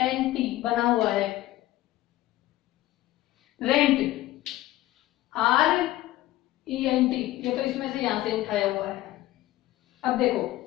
बना हुआ है। रेंट RENT, ये तो इसमें से यहां से उठाया हुआ है। अब देखो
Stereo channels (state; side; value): quieter; right; 15.9 dB